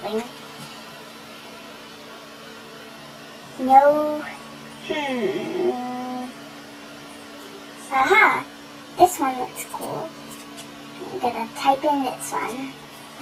No. Aha! This one looks cool. I'm gonna type in this one.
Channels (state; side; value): identical; both; correlation 1.00